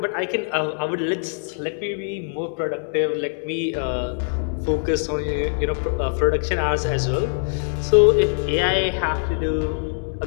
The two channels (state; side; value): silent; right; digital silence